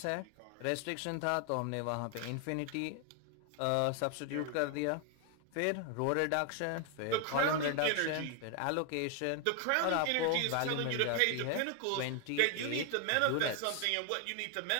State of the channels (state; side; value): different; both; correlation 0.00